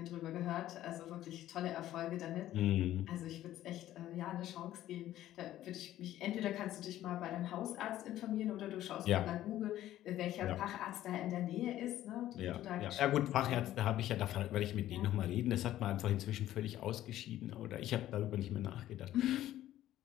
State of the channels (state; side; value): quieter; right; 13.4 dB